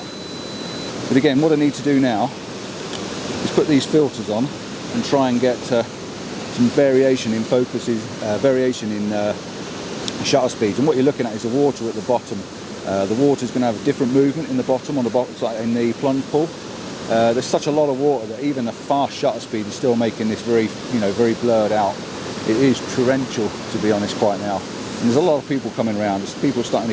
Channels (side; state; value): both; identical; correlation 1.00